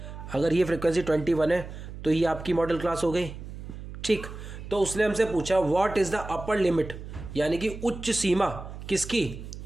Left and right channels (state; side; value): noise; right; hum, 11 dB below the sound